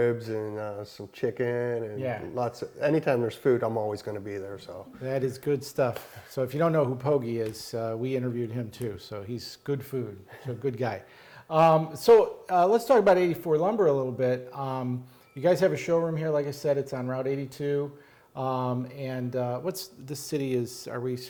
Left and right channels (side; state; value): both; identical; correlation 1.00